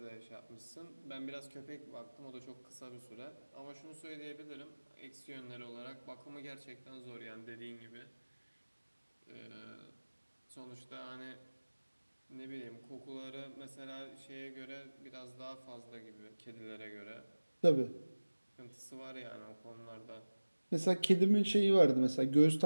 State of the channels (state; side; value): inverted; both; correlation -1.00